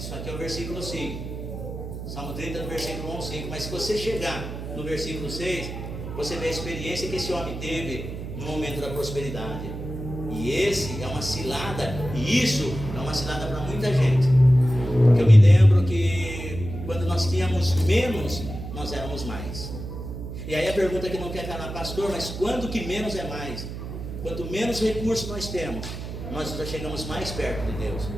aqui é o versículo 5, Salmo 30, do versículo 1 ao 5. Mas se você chegar no versículo 6, você vê a experiência que esse homem teve no momento da prosperidade. E esse é uma cilada, e isso é uma cilada para muita gente. Porque eu me lembro que quando nós tínhamos menos, nós éramos mais. E aí a pergunta que não quer calar: pastor, mas quando que menos é mais? Quanto menos recursos nós temos, nós já chegamos mais perto de Deus.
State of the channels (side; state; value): right; noise; hum, 8 dB below the sound